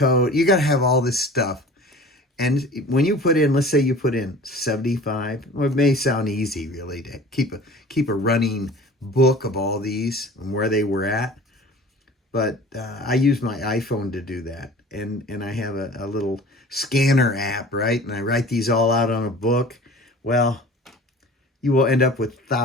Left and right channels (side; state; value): both; normal; correlation 0.42